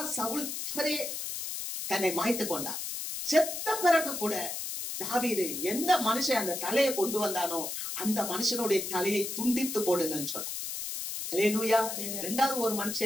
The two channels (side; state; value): left; noise; hiss, 5 dB below the sound